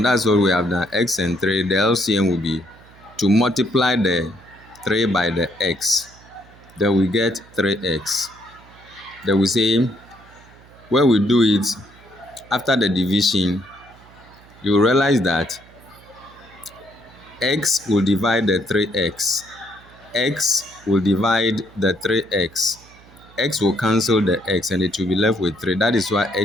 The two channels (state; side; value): noise; right; hum, 25 dB below the sound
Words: that's what we have done. X and 3, the LCM will be to multiply the 3 by the x. Then we get 3x. Then we say, when we do it, after the division, you realize that x will divide the 3x. X will divide the 3x. X will cancel the x and it will be left with 3. That is why